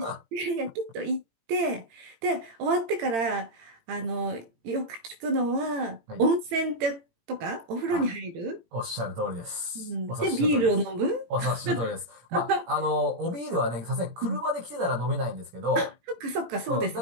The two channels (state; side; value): late; left; 17 ms